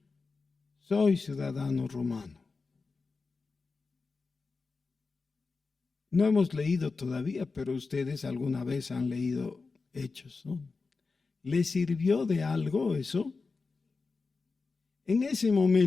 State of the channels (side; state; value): right; quieter; 4.3 dB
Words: soy ciudadano romano. No hemos leído todavía, pero ustedes alguna vez han leído Hechos, ¿no? ¿Le sirvió de algo eso? En ese